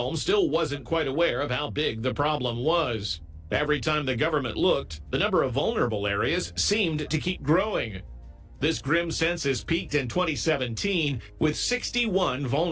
still wasn't quite aware of how big the problem was. Every time the government looked, the number of vulnerable areas seemed to keep growing. This grim census peaked in 2017 with 61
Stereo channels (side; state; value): both; identical; correlation 1.00